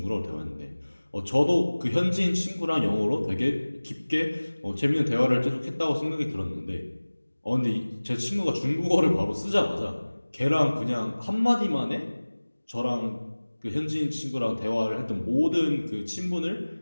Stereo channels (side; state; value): both; inverted; correlation -1.00